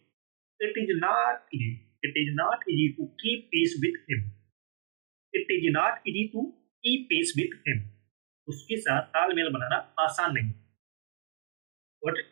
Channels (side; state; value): left; silent; 57 dB below the other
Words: it is not easy, it is not easy to keep pace with him, it is not easy to keep pace with him, उसके साथ तालमेल बनाना आसान नहीं है। Got it?